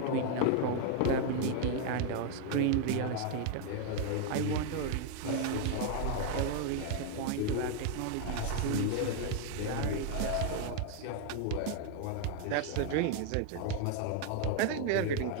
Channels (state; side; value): different; both; correlation 0.01